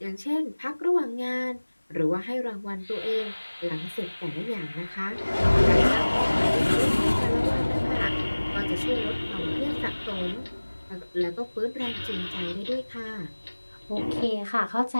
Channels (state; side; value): inverted; both; correlation -1.00